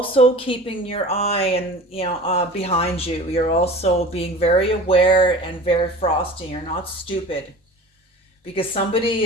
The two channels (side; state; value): both; normal; correlation 0.39